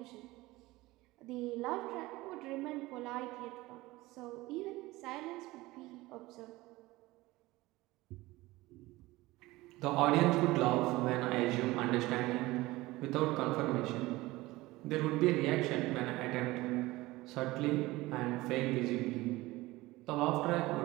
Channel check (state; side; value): quieter; left; 19.5 dB